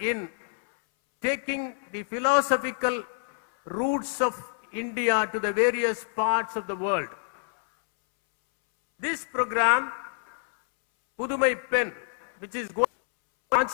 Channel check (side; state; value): right; silent; 60 dB below the other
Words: in taking the philosophical roots of India to the various parts of the world. This program, Pudumai Pen, which is